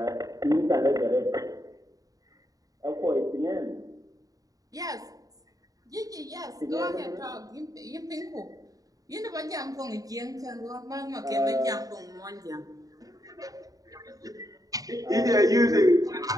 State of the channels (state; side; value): late; left; 0.18 ms